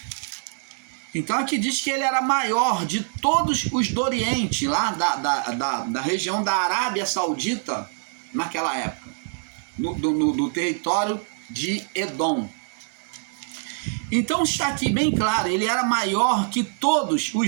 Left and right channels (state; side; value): silent; left; digital silence